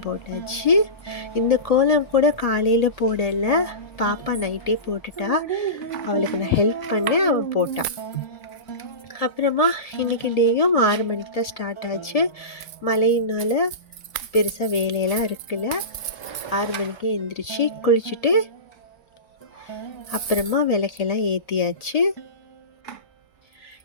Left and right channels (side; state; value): right; late; 1.8 ms